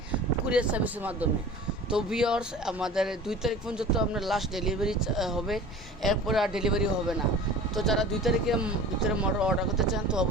কুরিয়ার সার্ভিসের মাধ্যমে। তো ভিউয়ার্স, আমাদের 2 তারিখ পর্যন্ত আপনার লাস্ট ডেলিভারি হবে, এরপরে আর ডেলিভারি হবে না। তো যারা 2 তারিখের ভিতরে মোটর অর্ডার করতে চান তো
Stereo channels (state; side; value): normal; both; correlation 0.39